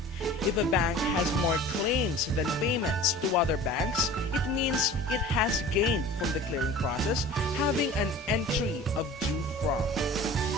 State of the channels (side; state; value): both; normal; correlation 0.42